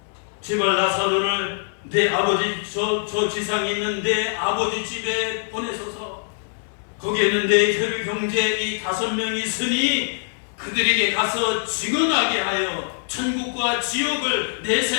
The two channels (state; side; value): silent; right; digital silence